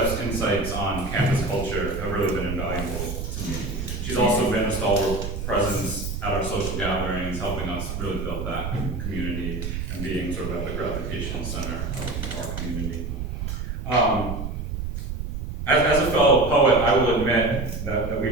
insights on campus culture have really been invaluable to me. She's also been a stalwart presence at our social gatherings, helping us really build that community and being sort of at the gravitation center of our community. As a fellow poet, I will admit that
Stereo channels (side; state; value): right; noise; rumble, 5 dB below the sound